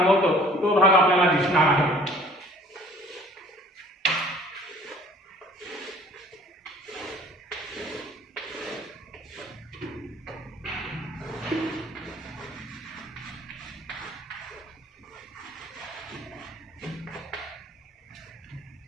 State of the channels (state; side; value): normal; both; correlation 0.52